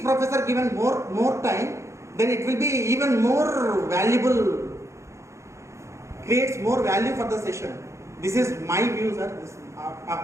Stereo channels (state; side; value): late; left; 0.14 ms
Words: professor given more time, then it will be even more valuable, creates more value for the session. This is my view sir, this